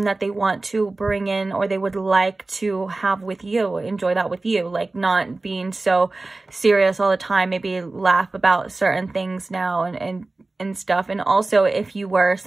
that they want to bring in, or they would like to have with you, enjoy that with you, like not being so serious all the time, maybe laugh about certain things now and stuff. And also, if you were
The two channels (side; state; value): left; quieter; 3.2 dB